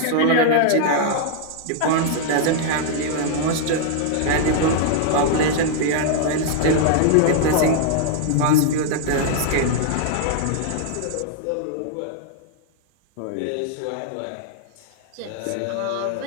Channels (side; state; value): both; different; correlation -0.01